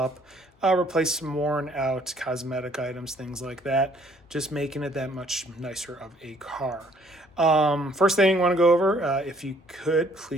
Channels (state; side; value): normal; both; correlation 0.62